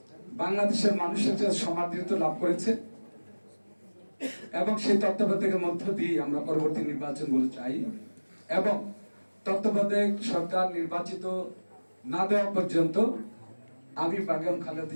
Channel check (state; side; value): inverted; both; correlation -1.00